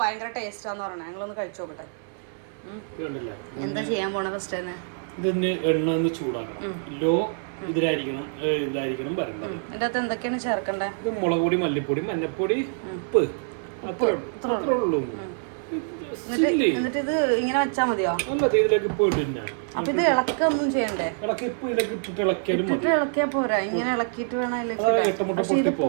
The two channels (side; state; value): left; silent; 58 dB below the other